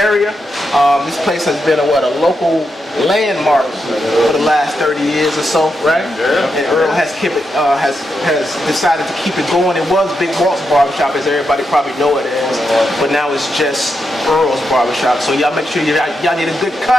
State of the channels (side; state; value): both; normal; correlation 0.85